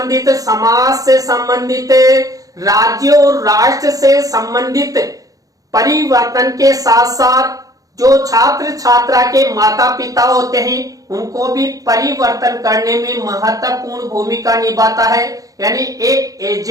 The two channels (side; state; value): left; late; 0.17 ms